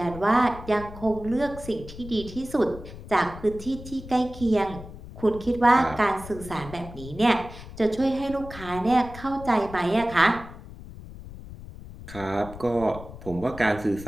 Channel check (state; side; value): noise; left; rumble, 14 dB below the sound